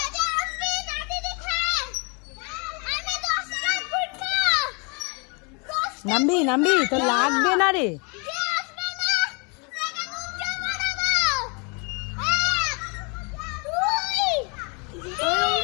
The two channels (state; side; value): quieter; right; 33.3 dB